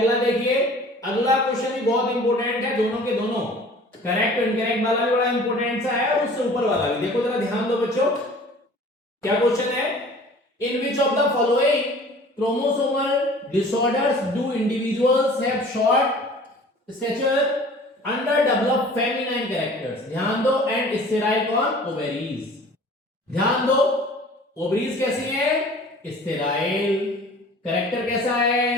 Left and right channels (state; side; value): normal; both; correlation 0.46